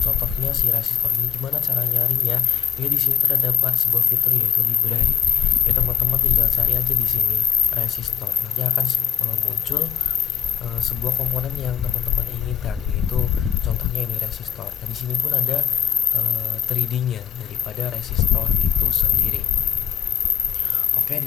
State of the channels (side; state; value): right; quieter; 7.9 dB